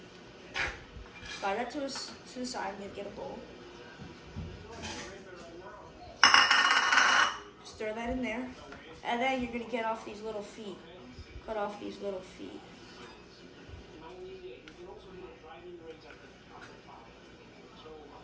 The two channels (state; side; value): identical; both; correlation 1.00